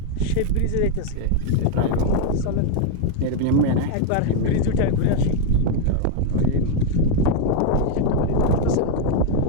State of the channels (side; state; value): both; different; correlation 0.01